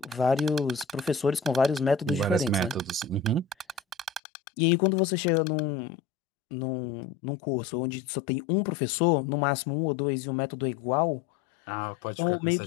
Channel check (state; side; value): drops out; right; at 4.2 s